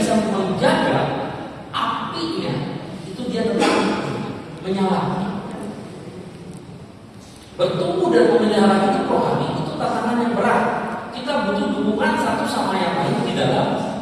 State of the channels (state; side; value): identical; both; correlation 1.00